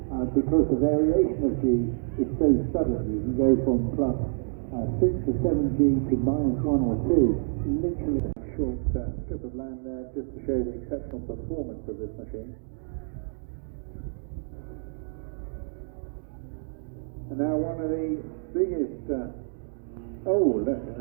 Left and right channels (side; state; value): left; silent; 59 dB below the other